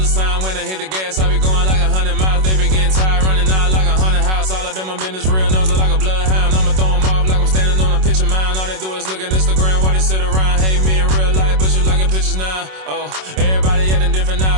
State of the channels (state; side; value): late; left; 27 ms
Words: sign. When I hit the gas, I be going like 100 miles. They be getting tired, running out like 100 house. All up in my business, real nose like a bloodhound. I'ma throw them off like I'm standing on a picture mound. All they do is look at Instagram while they sit around. Hate me in real life, but you liking pictures now. Oh, everybody acting different